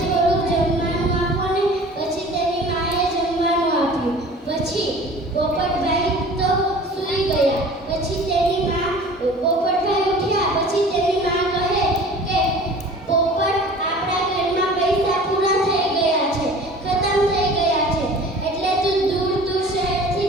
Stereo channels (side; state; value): both; normal; correlation 0.44